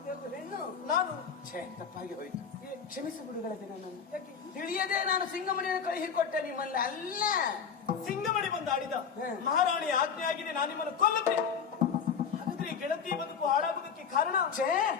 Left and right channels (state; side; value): quieter; right; 6.7 dB